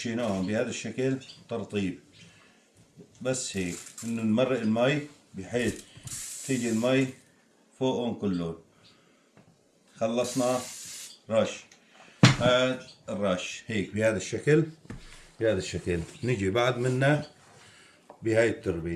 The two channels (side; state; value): both; identical; correlation 1.00